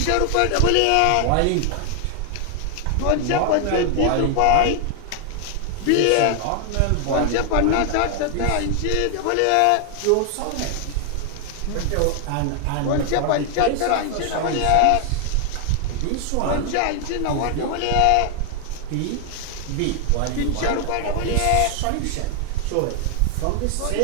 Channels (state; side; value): different; both; correlation 0.00